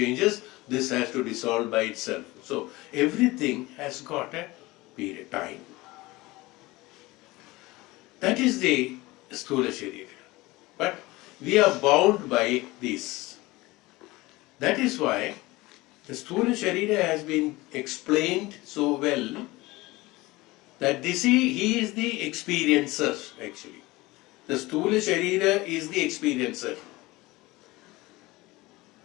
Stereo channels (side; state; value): right; quieter; 20.6 dB